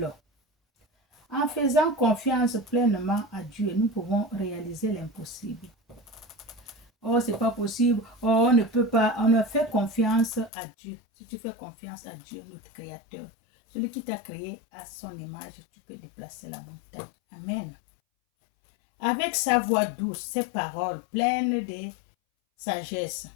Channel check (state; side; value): drops out; right; at 10.5 s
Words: En faisant confiance pleinement à Dieu, nous pouvons réaliser l'impossible. Oh, c'est pas possible. Oh, on ne peut pas. On ne fait confiance à Dieu. Si tu fais confiance à Dieu, notre Créateur, celui qui t'a créé à son image, tu peux déplacer la montagne. Amen. Avec sa voix douce, ses paroles pleines de sagesse,